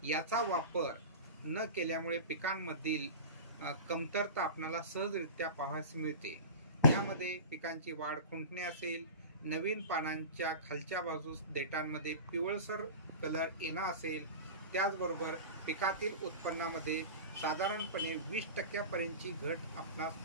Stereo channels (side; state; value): both; inverted; correlation -0.31